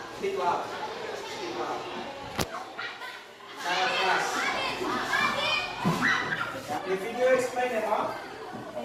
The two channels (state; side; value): identical; both; correlation 1.00